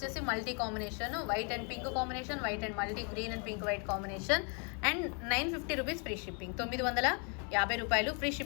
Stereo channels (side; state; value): right; quieter; 37.2 dB